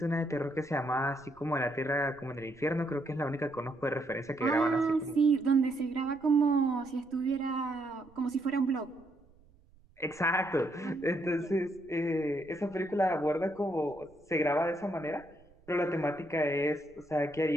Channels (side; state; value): right; noise; rumble, 29 dB below the sound